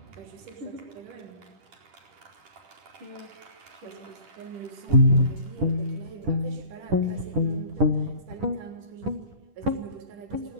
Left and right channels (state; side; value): late; left; 10 ms